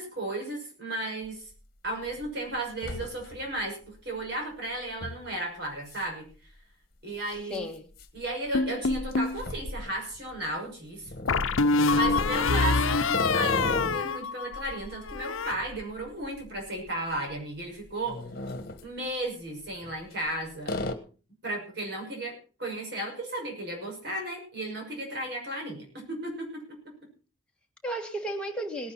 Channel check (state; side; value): normal; both; correlation 0.18